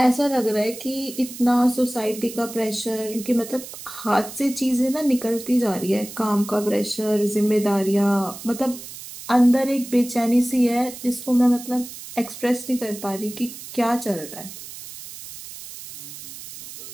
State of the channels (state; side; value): noise; right; hiss, 13 dB below the sound